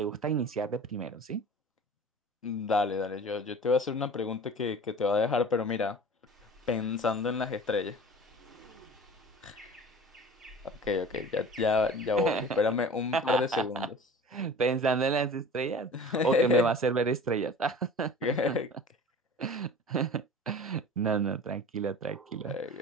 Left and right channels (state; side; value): normal; both; correlation 0.40